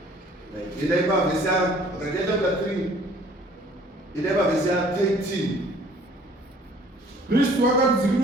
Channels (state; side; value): normal; both; correlation 0.55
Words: idai pavhesi Galatia chapter 3 idai pavhesi 13. Kristu